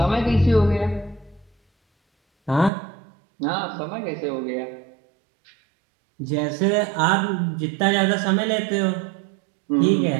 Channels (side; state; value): left; drops out; at 2.7 s